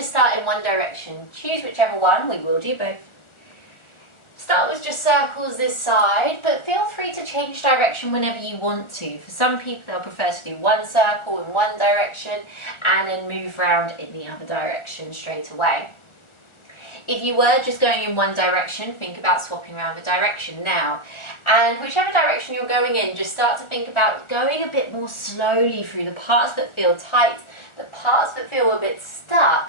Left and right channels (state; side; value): late; right; 1.4 ms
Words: start in one direction. Choose whichever one, we will do both. Start with just circles this side, but feel free to change direction whenever you want to. For some people, they'll prefer to do one circle in one direction and then move around in the other direction straight away. If you were just going in one direction, think about swapping around the direction now. And whichever direction you're going in, just start to think about going a bit more slowly through the parts that feel tight, the parts that feel a bit